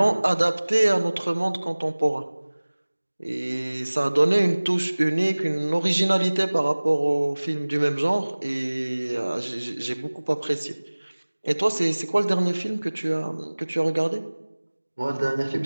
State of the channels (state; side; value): inverted; both; correlation -1.00